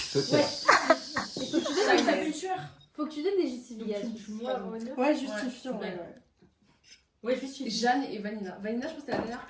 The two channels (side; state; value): both; identical; correlation 1.00